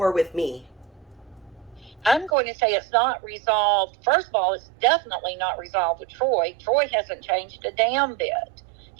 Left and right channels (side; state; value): left; drops out; at 2.3 s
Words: with me? I'm going to say it's not resolved. First of all, it's definitely not resolved with Troy. Troy hasn't changed a damn bit.